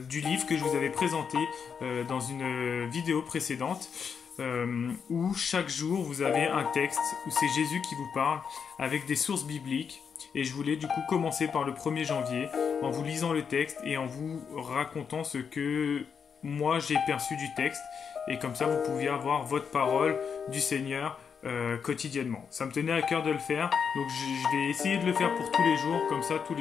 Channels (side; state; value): right; quieter; 6.6 dB